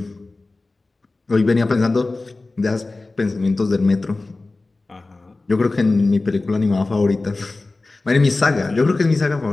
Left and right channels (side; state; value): right; quieter; 3.3 dB